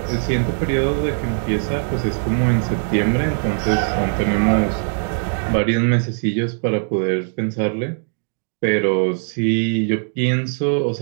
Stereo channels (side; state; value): left; silent; 58 dB below the other